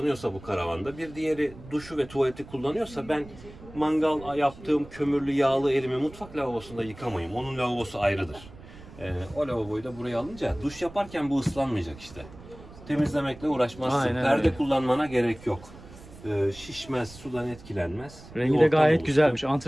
bu karavanda, bir diğeri duşu ve tuvaleti kullanıyorsa ben mangal yaptığım kömürlü yağlı elimi mutfak lavabosunda yıkamayayım. Onun lavabosu ayrıdır. O lavaboyu da buraya alınca duş yaparken bu ıslanmayacak işte. Temizlemekle uğraşmazsın. Aynen Perde öyle. kullanmana gerek yok. Şişmez, sudan etkilenmez. Rengi de gayet güzelmiş.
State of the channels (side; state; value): right; noise; rumble, 18 dB below the sound